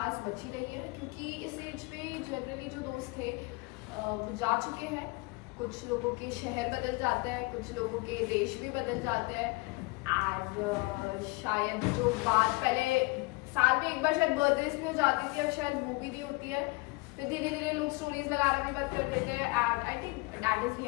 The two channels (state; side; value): quieter; right; 25.5 dB